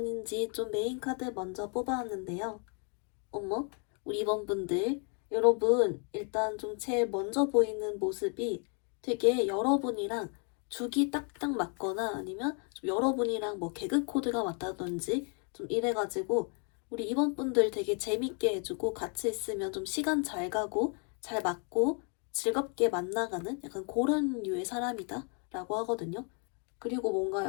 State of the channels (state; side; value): quieter; right; 39.1 dB